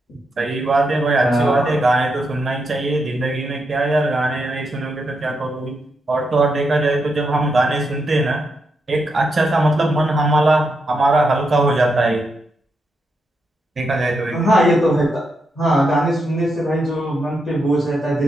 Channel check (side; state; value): both; normal; correlation 0.83